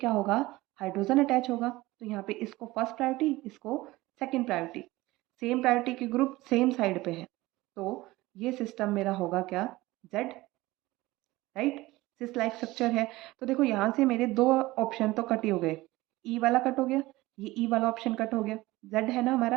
होगा, हाइड्रोजन अटैच होगा, तो यहाँ पे इसको फर्स्ट प्रायोरिटी, इसको सेकंड प्रायोरिटी। सेम प्रायोरिटी के ग्रुप सेम साइड पे है, तो ये सिस्टम मेरा होगा क्या, Z, राइट। सिस लाइक स्ट्रक्चर है, तो देखो यहाँ से मेरे 2 ऑप्शन तो कट ही हो गए, E वाला कट हो गया, ये E वाला ऑप्शन कट हो गया, Z है ना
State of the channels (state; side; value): quieter; left; 19.1 dB